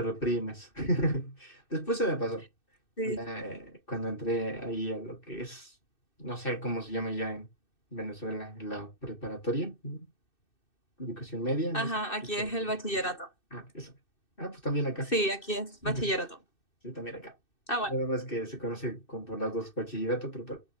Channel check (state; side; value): late; right; 2.6 ms